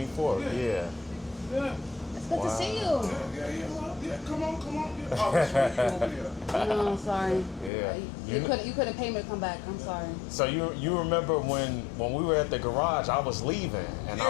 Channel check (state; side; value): drops out; right; at 7.7 s